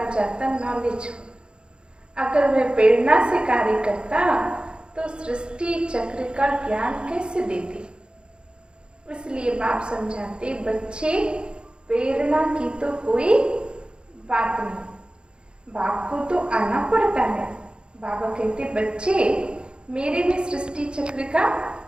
जाता नॉलेज। अगर वह प्रेरणा से कार्य करता तो सृष्टि चक्र का ज्ञान कैसे देते? इसलिए बाप समझाते बच्चे प्रेरणा की तो कोई बात नहीं, बाप को तो आना पड़ता है। बाबा कहते बच्चे मेरे में सृष्टि चक्र का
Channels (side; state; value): left; late; 0.052 ms